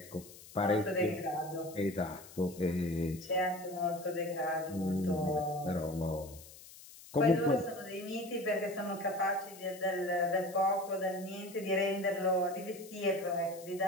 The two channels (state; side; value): noise; left; hiss, 18 dB below the sound